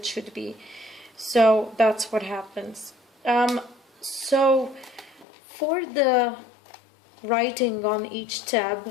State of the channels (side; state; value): right; drops out; at 5.2 s